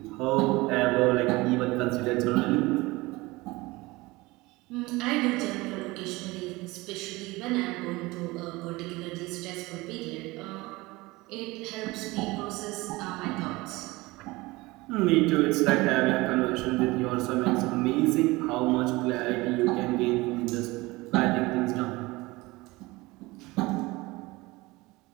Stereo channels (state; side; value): quieter; left; 21.6 dB